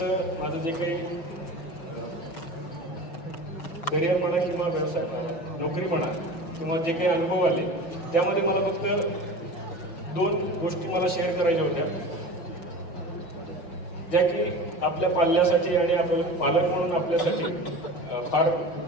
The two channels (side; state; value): right; late; 5.9 ms